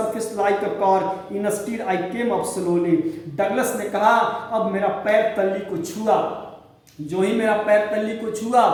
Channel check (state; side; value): identical; both; correlation 1.00